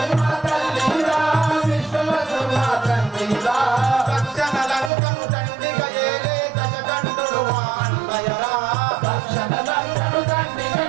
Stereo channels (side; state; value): left; drops out; at 4.9 s